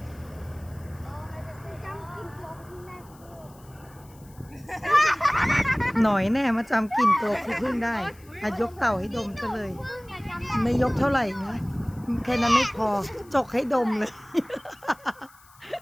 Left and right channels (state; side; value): noise; left; hiss, 27 dB below the sound